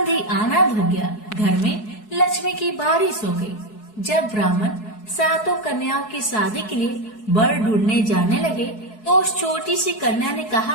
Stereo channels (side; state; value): right; late; 4.7 ms